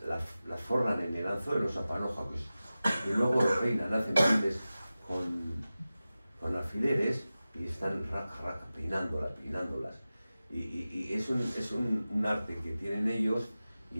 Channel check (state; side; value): inverted; both; correlation -0.95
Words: forran en el anzuelo, esa panoja, pues, y luego lo peinan, hacen peines con alfileres y están peinándolas. Y es un arte que tienen ellos,